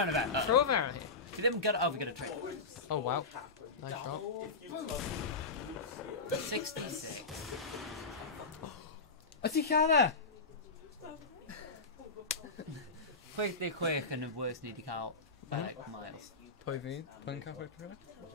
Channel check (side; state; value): right; quieter; 4.0 dB